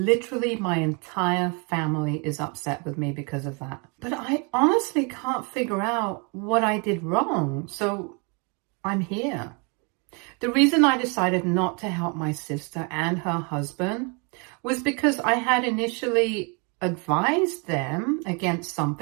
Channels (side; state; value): left; quieter; 33.5 dB